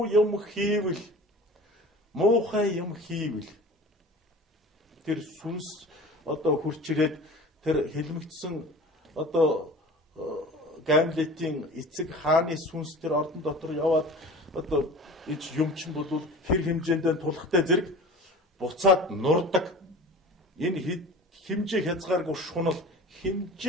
юм хийвэл муухай юм хийвэл тэр сүнс одоо хурч ирээд тэр хэлмэгдсэн одоо Гамлетийн эцэг хааны сүнс тэр ордон дотор яваад одоо ич юмчин болвол хэр хэмжээндээ тулахтай зэрэг буцаад нурдаг. Энэ хэмжээ хязгааргүй шунал,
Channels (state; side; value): normal; both; correlation 0.39